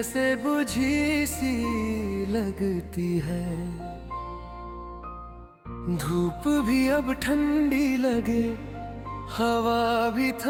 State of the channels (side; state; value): both; identical; correlation 1.00